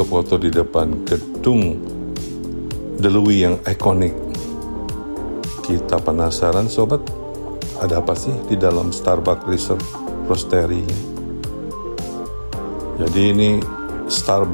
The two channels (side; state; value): both; inverted; correlation -1.00